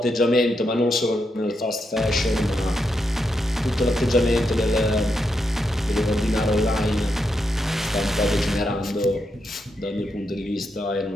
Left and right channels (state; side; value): normal; both; correlation 0.83